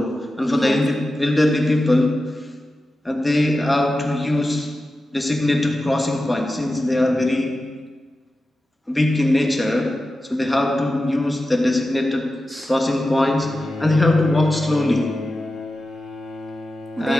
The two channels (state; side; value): normal; both; correlation 0.92